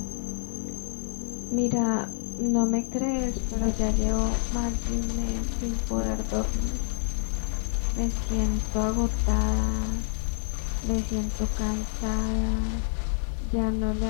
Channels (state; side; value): silent; right; digital silence